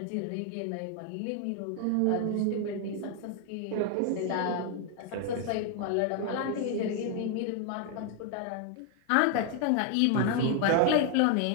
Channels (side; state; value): both; different; correlation 0.01